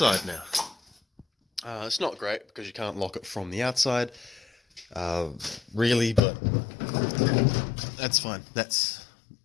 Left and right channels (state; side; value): drops out; right; at 6.2 s